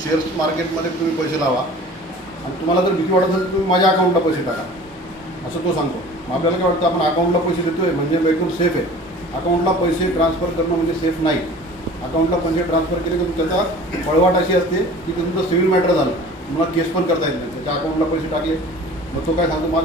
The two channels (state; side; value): normal; both; correlation 0.44